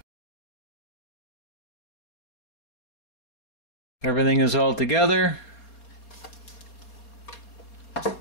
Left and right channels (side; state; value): right; late; 4.2 ms